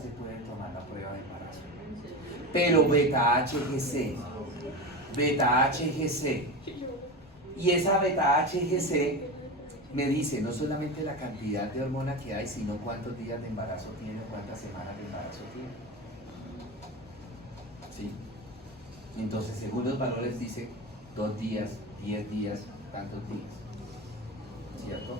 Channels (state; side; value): normal; both; correlation 0.24